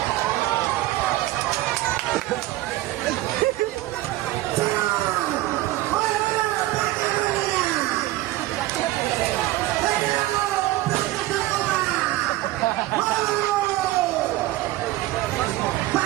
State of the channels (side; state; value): left; quieter; 16.7 dB